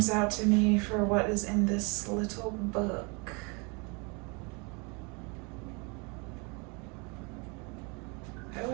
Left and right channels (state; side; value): quieter; left; 31.1 dB